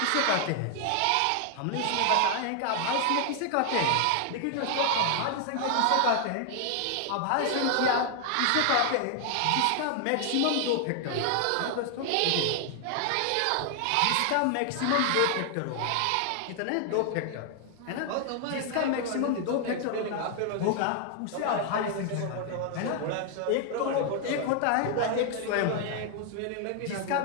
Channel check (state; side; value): different; both; correlation 0.00